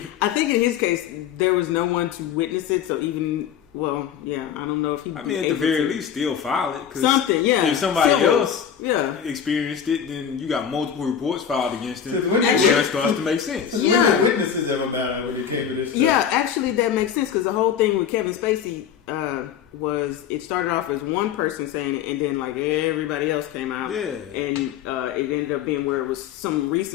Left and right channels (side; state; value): right; quieter; 8.6 dB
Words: I think in his case there was no one to witness it, so even I don't know if he. I mean, at the very least, still file it. 'Cause something, yeah. if somebody Civil. else Yeah. experienced it, then you got multiple reports filed against it. 'Cause when Well, they- that starts to make sense. When Yeah. the witnesses ever matter when it came to this stuff? Yeah, actually, that makes sense because the whole thing with Kevin Spacey was it started off as one person saying it, and then like everybody else came out, Yeah. and it ended up being where it was some